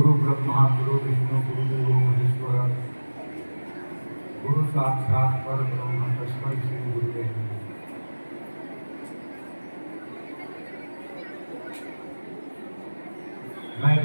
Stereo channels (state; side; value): inverted; both; correlation -1.00